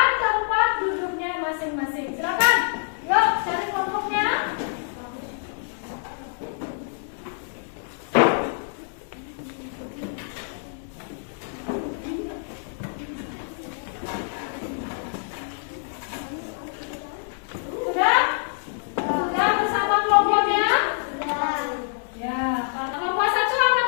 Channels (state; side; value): silent; right; digital silence